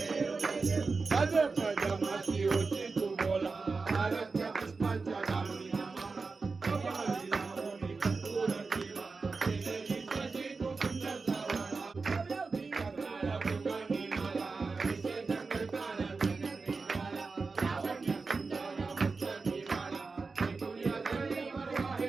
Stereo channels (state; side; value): quieter; left; 4.3 dB